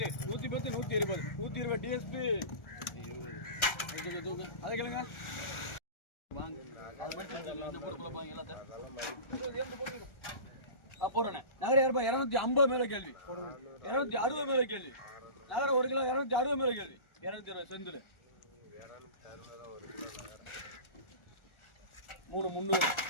110 120 120 டிஎஸ்பி அதை கேளுங்க நகர 250 மேல கேள்வி 260 மேல கேள்வி நகர 1 கிலோ 260 மேல கேள்வி 220 செந்தில் 300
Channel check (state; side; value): late; right; 1.4 ms